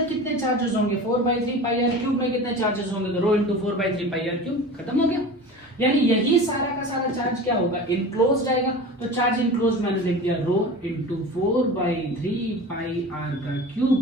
कितने चार्जेस होंगे? 4/3 पाई आर क्यूब में कितने चार्जेस होंगे? तो rho into 4/3 pi are cube. खत्म हो गया। यानी यही सारा का सारा चार्ज क्या होगा? इनक्लोज्ड आएगा। तो चार्ज इनक्लोज्ड मैंने लिख दिया रो इंटू 4/3 पाई आर का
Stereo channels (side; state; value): both; normal; correlation 0.34